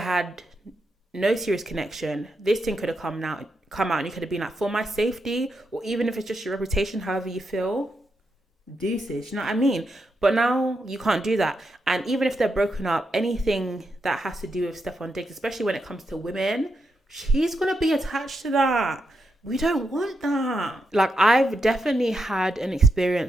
had no serious connection. This thing could have come out and you could have been like, for my safety, or even if it's just your reputation, however you feel, deuces, you know what I mean? But now you can't do that. And even if they're broken up, anything that has to do with Stefon Diggs, especially when it comes to women, she's going to be attached to that. We don't want that. Like, I've definitely had an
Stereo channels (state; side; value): normal; both; correlation 0.84